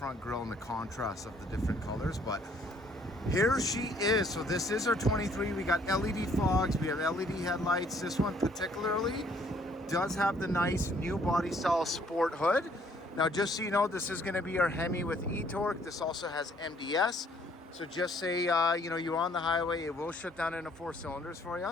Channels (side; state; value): both; normal; correlation 0.62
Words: grille and the contrast of the different colors. But here she is. So this is our 23. We got LED fogs, we have LED headlights. This one particularly does have the nice new body style sport hood. Now just so you know, this is going to be our Hemi with e-torque. This also has MDS. So just say, you're on the highway, it will shut down into 4 cylinders for